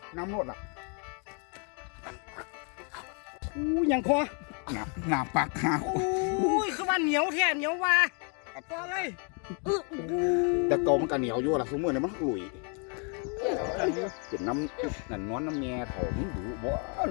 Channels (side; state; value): right; quieter; 38.4 dB